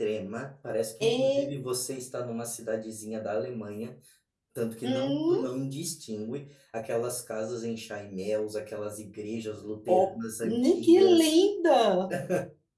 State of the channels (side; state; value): both; identical; correlation 1.00